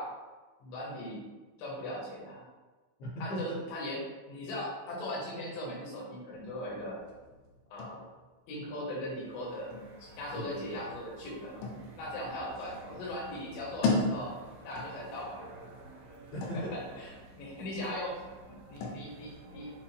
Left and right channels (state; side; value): late; right; 15 ms